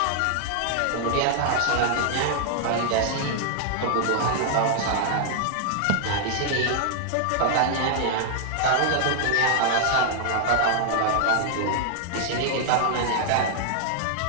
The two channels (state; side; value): different; both; correlation 0.00